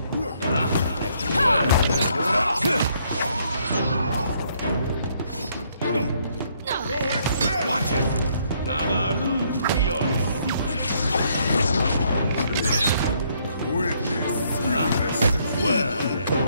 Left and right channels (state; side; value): inverted; both; correlation -0.69